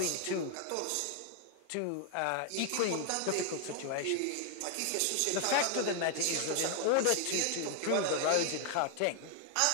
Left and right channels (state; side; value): different; both; correlation 0.00